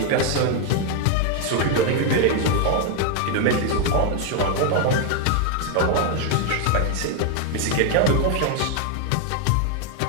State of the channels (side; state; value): both; different; correlation 0.00